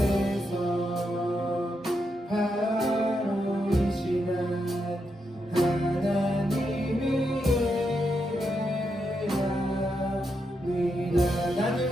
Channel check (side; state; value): both; normal; correlation 0.83